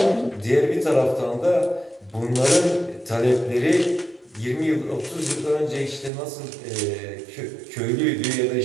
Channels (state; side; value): drops out; left; at 6.1 s